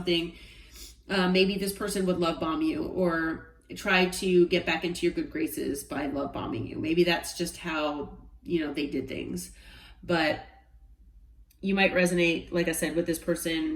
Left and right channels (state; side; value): identical; both; correlation 1.00